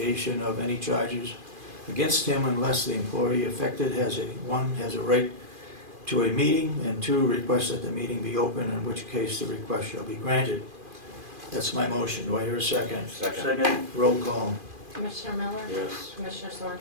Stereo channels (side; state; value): left; late; 2.4 ms